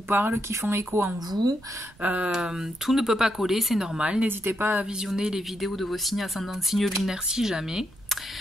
qui font écho en vous. Tout ne peut pas coller, c'est normal, n'hésitez pas à visionner les vidéos de vos signes ascendants, signes lunaires si jamais.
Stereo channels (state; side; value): noise; right; rumble, 26 dB below the sound